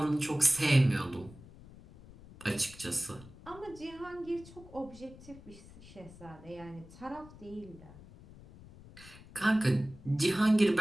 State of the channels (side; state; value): left; noise; rumble, 19 dB below the sound